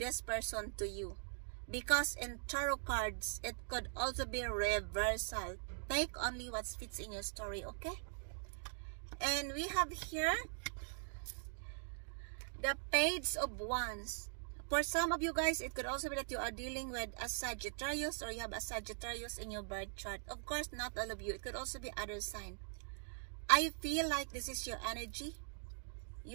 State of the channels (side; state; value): left; silent; digital silence